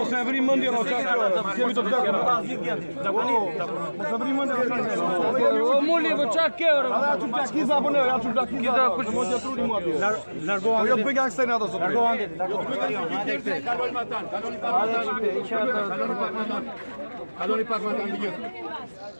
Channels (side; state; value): both; inverted; correlation -1.00